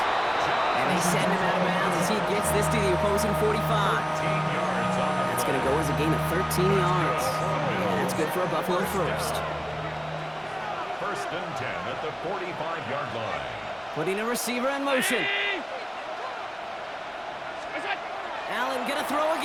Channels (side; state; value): both; identical; correlation 1.00